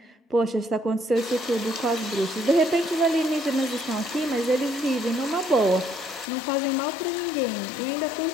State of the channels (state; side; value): drops out; right; at 6.2 s